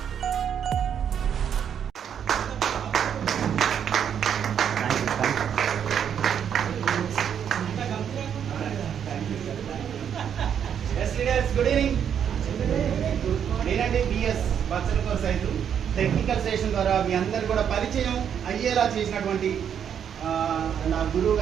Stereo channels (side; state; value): left; quieter; 8.4 dB